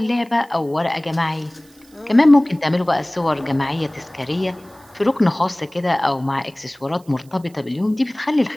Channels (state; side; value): noise; right; hiss, 29 dB below the sound